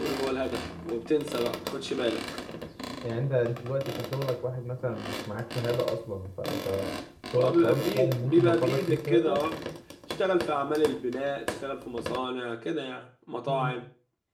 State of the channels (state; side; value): identical; both; correlation 1.00